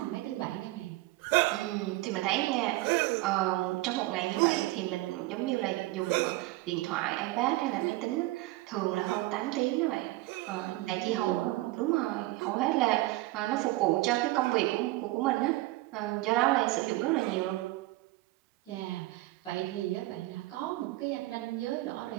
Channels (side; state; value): left; quieter; 18.9 dB